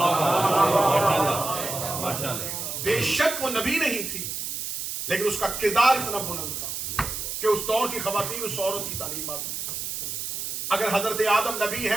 بے شک وہ نبی نہیں تھی لیکن اس کا کردار اتنا بلند تھا کہ اس دور کی خواتین اس عورت کی تعلیمات میں. اگر حضرت آدم نبی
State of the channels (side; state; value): right; noise; hiss, 4 dB below the sound